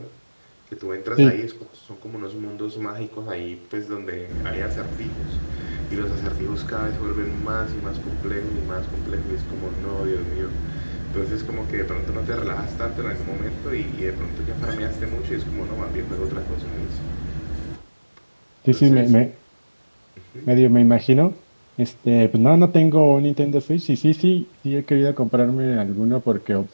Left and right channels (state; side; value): inverted; both; correlation -1.00